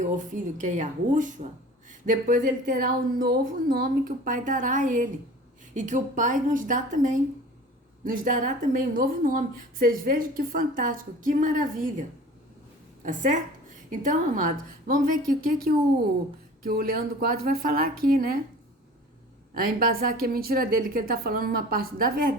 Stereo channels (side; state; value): both; normal; correlation 0.42